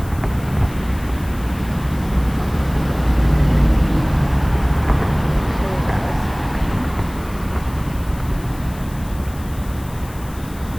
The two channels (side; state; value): left; noise; hiss, 20 dB below the sound